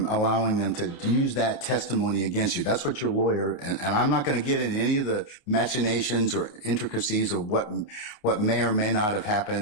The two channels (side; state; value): right; late; 28 ms